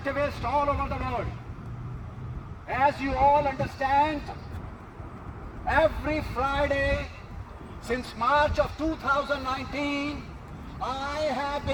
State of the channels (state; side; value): identical; both; correlation 1.00